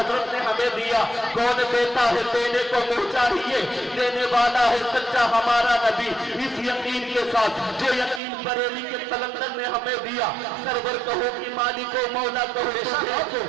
نے ہمیں دیا۔ کون دیتا ہے دینے کو منہ چاہیے، دینے والا ہے سچا ہمارا نبی۔ اس یقین کے ساتھ جو یقین بریلی کے قلندر نے ہمیں دیا، سرور کہو کہ مالک و مولا کہو،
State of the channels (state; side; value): drops out; left; at 8.2 s